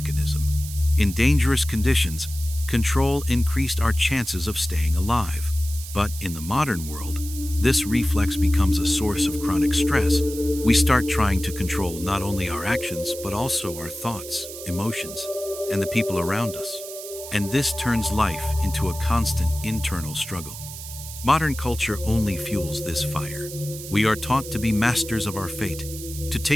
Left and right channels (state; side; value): noise; right; hiss, 12 dB below the sound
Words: In dangerous conditions, control increased our chances of staying alive. But in the modern world, this reflex becomes a source of chronic stress. We start trying to control not only our actions, but also our thoughts, emotions, and the people around us. And this turns life into a constant internal struggle. Modern culture only fuels this fire. We are taught to be masters of our fate, to